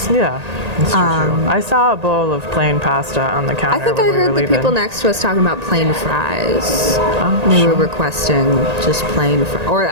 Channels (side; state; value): left; late; 1.8 ms